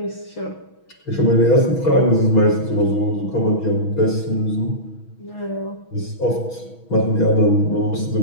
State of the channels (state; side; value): late; right; 6.2 ms